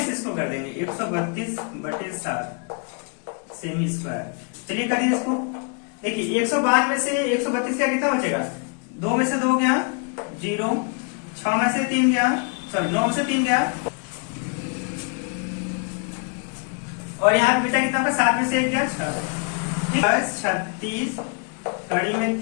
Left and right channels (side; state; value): right; quieter; 38.5 dB